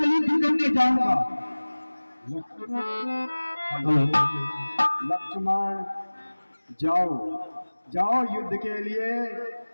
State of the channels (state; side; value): inverted; both; correlation -1.00